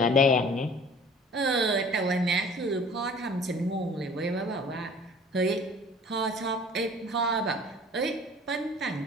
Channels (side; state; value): both; normal; correlation 0.47